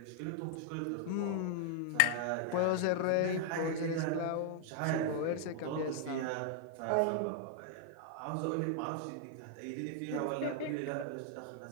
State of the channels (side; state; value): both; different; correlation 0.00